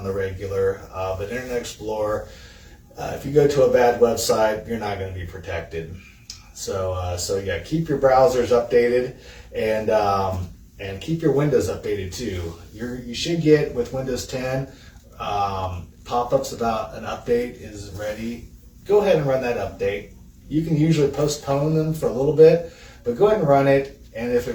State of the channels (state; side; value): identical; both; correlation 1.00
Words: the regular, but Internet Explorer, if you go to a bad website, you're not going to be protected. So yeah, keep your browsers updated, and keep your Windows updated too. You should get, with Windows 10, pop-ups about an update is ready. Go ahead and run that update. You can usually postpone them for a little bit, but go ahead and run it. And if